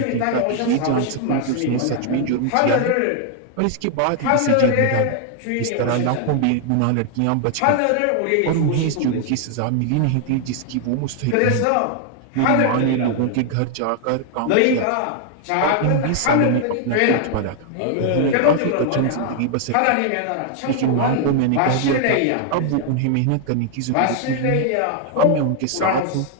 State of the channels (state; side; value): different; both; correlation 0.00